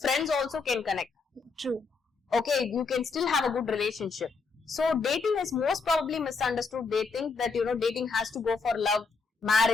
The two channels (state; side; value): quieter; right; 4.5 dB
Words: friends also can connect. True. Okay, you can still have a good relationship. So, dating is most probably misunderstood. They think that, dating has to go for love,